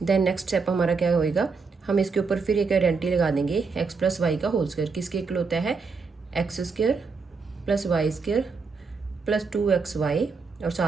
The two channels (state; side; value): quieter; left; 4.7 dB